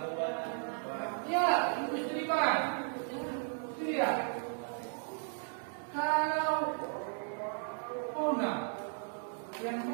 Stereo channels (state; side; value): silent; left; 54 dB below the other